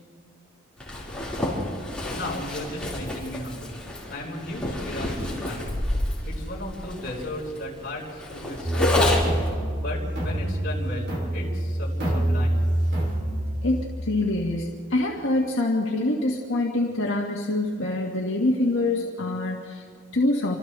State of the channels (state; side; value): normal; both; correlation 0.64